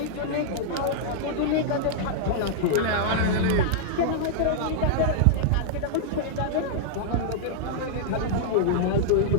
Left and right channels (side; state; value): both; different; correlation -0.02